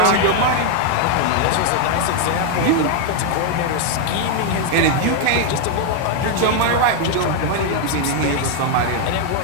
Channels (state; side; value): different; both; correlation 0.01